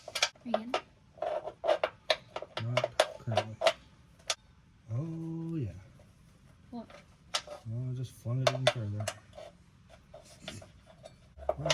you in? Not currently. Oh, yeah. What? Oh, I just flung it in further. Well,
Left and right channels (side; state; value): both; identical; correlation 1.00